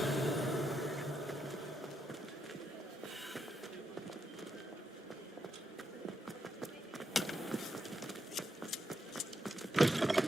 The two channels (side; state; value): both; normal; correlation 0.82